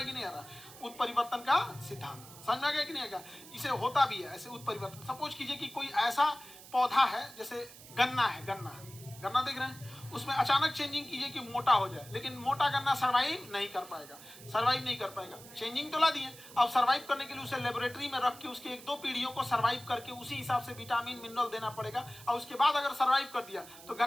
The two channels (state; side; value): noise; right; hiss, 18 dB below the sound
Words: कि नहीं आ रहा? उत्परिवर्तन का सिद्धांत समझ में आ गया कि नहीं आएगा? इसे होता भी है ऐसे उत्परिवर्तन। सपोज कीजिए कि कोई ऐसा पौधा है, जैसे गन्ना है, गन्ना देख रहे हैं, उसमें अचानक चेंजिंग कीजिए कि मोटा हो जाए, लेकिन मोटा गन्ना सर्वाइव नहीं कर पाएगा। चेंजिंग तो ला दिए, अब सर्वाइव करने के लिए उसे लेबोरेटरी में रख के उसके 1-2 पीढ़ियों को सर्वाइव करके उसी हिसाब से विटामिन मिनरल देना पड़ेगा, और उसके बाद अगर सर्वाइव कर दिया तो